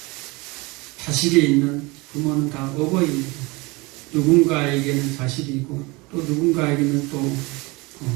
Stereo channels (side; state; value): left; quieter; 24.7 dB